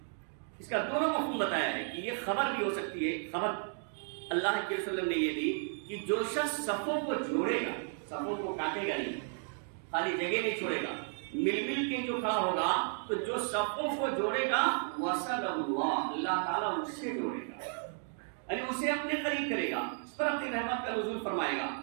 اس کا دونوں مفہوم بتایا ہے کہ یہ خبر بھی ہو سکتی ہے. خبر اللہ کے رسول نے یہ دی کہ جو شخص صفوں کو جوڑے گا، صفوں کو کاٹے گا نہیں، خالی جگہ نہیں چھوڑے گا، مل مل کے جو کھڑا ہوگا، تو جو صفوں کو جوڑے گا وصل اللہ، اللہ تعالیٰ اس سے جوڑے گا، یعنی اسے اپنے قریب کرے گا، اس پر اپنی رحمت کا نزول فرمائے گا.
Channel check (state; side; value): silent; left; 55 dB below the other